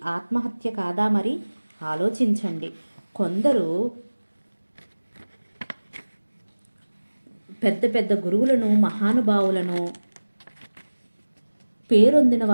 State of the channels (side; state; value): both; inverted; correlation -1.00